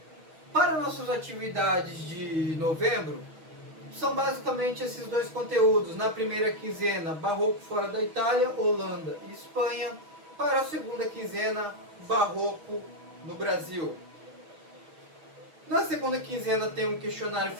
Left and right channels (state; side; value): late; left; 6.2 ms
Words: Para nossas atividades de novembro, são basicamente esses dois conteúdos. Na primeira quinzena, Barroco fora da Itália, Holanda e Espanha. Para a segunda quinzena, Barroco no Brasil. Na segunda quinzena tem um questionário